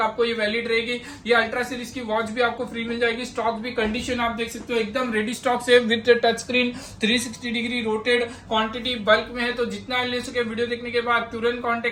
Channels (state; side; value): identical; both; correlation 1.00